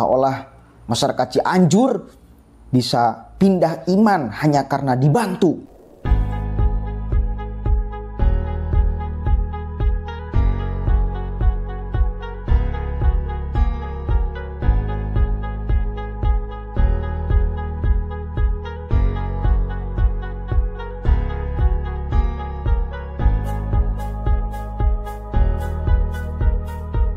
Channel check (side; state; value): both; identical; correlation 1.00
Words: masyarakat Cianjur bisa pindah iman hanya karena dibantu.